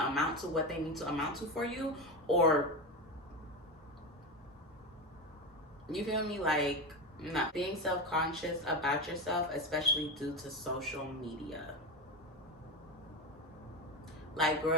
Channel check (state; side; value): normal; both; correlation 0.18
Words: amount to what they need to amount to for you, or, you feel me? Like, not being self-conscious about yourself, especially due to social media. Like,